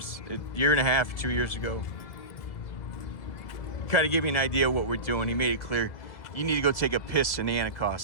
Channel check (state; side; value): late; right; 2.0 ms